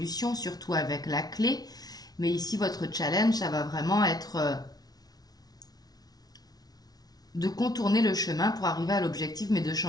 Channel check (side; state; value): right; late; 0.19 ms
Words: surtout avec la clé. Mais ici votre challenge, ça va vraiment être de contourner le chemin pour arriver à l'objectif, mais de